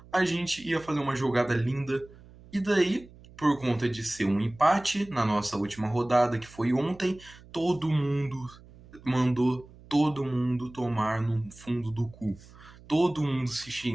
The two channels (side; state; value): right; noise; hum, 22 dB below the sound